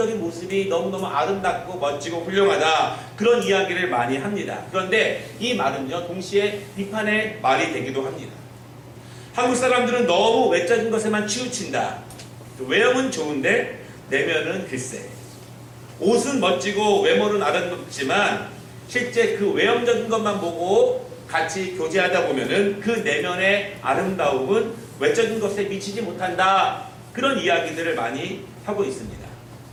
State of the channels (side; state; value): both; identical; correlation 1.00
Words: 모습이 너무너무 아름답고 멋지고 훌륭하다. 그런 이야기를 많이 합니다. 그런데 이 말은요, 동시에 비판의 말이 되기도 합니다. 한국 사람들은 너무 외적인 것에만 치우친다. 외형은 좋은데 내면은 글쎄. 옷은 멋지고 외모는 아름답지만 실제 그 외형적인 것만 보고 같이 교제하다 보면은 그 내면의 아름다움은 외적인 것에 미치지 못한다. 그런 이야기들을 많이 하고 있습니다.